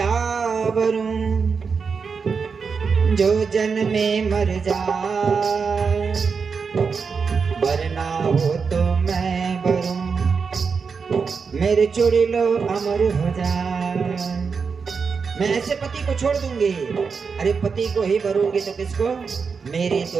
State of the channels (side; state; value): left; quieter; 5.5 dB